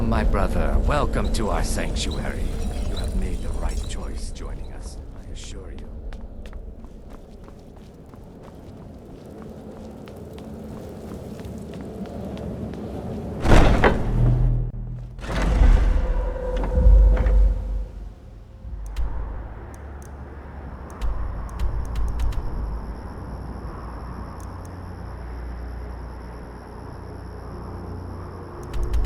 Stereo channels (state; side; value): identical; both; correlation 1.00